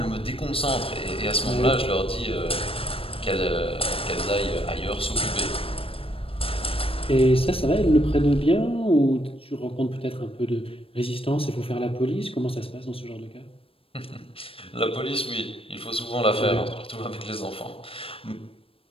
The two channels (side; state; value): right; late; 0.27 ms